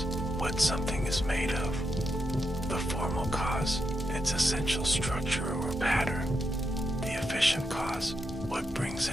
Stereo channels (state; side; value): normal; both; correlation 0.84